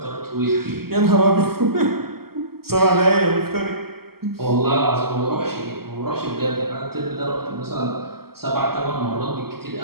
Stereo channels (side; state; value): left; late; 0.95 ms